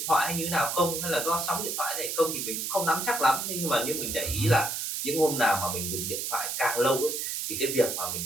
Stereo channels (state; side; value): noise; right; hiss, 3 dB below the sound